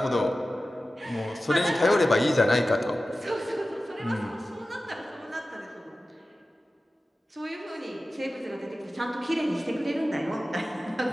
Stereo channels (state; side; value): normal; both; correlation 0.95